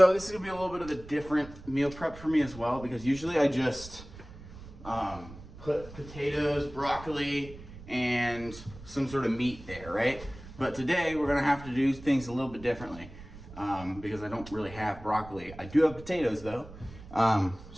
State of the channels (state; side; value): noise; right; rumble, 16 dB below the sound